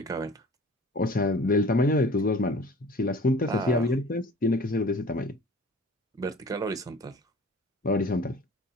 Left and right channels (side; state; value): both; normal; correlation 0.46